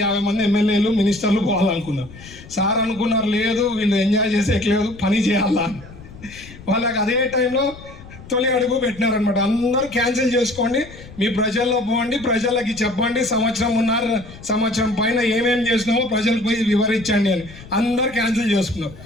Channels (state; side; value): noise; left; rumble, 18 dB below the sound